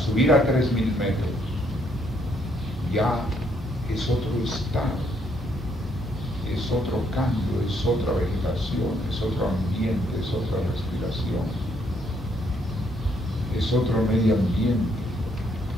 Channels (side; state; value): both; normal; correlation 0.71